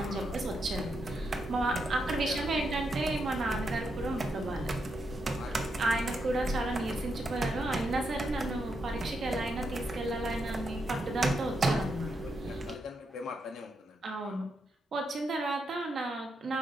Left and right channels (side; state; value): both; normal; correlation 0.82